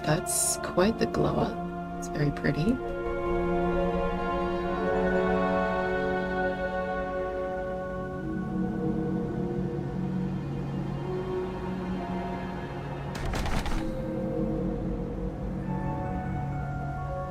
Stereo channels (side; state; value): both; identical; correlation 1.00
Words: That's quite the glow up. It's very pretty.